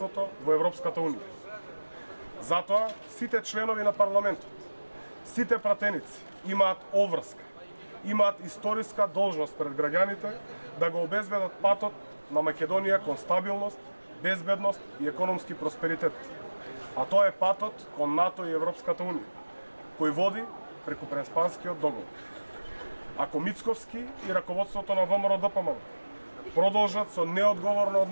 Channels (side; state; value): both; inverted; correlation -1.00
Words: во Европската Унија. Затоа сите членови на парламентот, сите пратеници имаат обврска, имаат историска должност пред граѓаните да го обезбедат патот на Македонија кон стабилност, безбедност и економски просперитет. А тоа е патот кон НАТО и Европската Унија, кој води преку Преспанскиот договор. Ако Мицковски и раководството на ВМРО-ДПМН продолжат со неодговорно